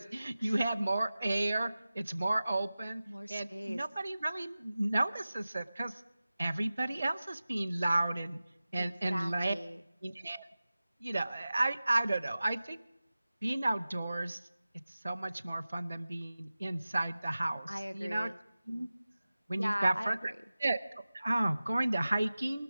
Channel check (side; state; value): both; inverted; correlation -0.96